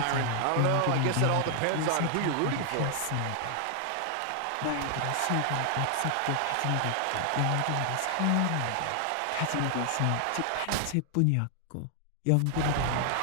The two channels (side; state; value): both; different; correlation 0.00